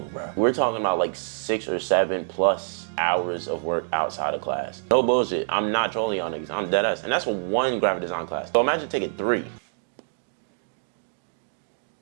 bro. We're talking about like 6 or 7 plus hours of work outside of class. No bullshit, I'm not trolling y'all niggas, I'm dead ass. And that's for 1 graphic design class. So imagine taking 3.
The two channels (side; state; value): left; silent; digital silence